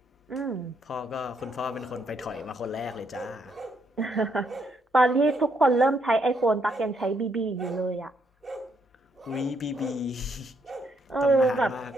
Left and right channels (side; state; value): both; normal; correlation 0.74